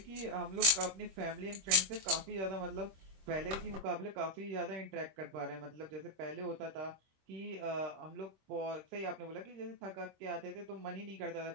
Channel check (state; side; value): late; left; 26 ms